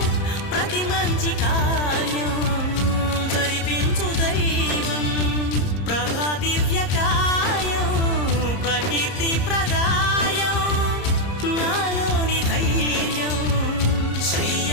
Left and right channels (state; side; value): late; right; 30 ms